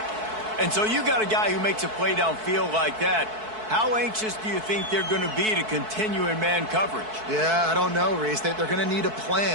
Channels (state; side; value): late; left; 4.6 ms